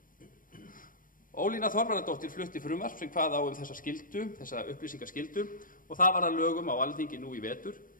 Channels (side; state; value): right; late; 0.40 ms